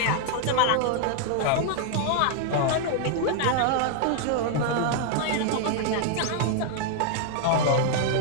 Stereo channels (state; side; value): different; both; correlation 0.00